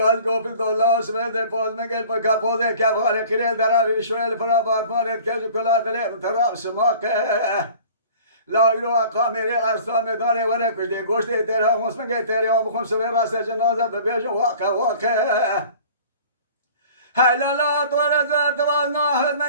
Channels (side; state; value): both; inverted; correlation -0.47